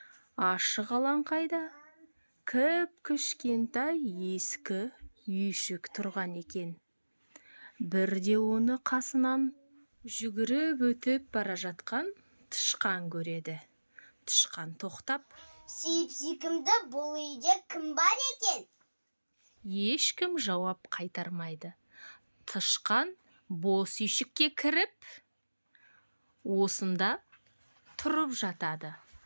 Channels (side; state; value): both; inverted; correlation -1.00